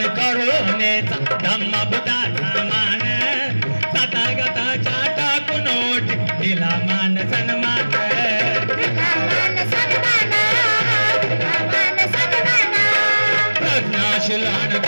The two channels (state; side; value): inverted; both; correlation -1.00